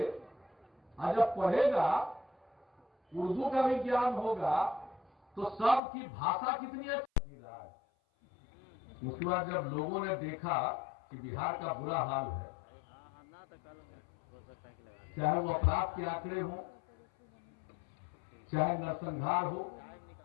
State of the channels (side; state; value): right; drops out; at 5.8 s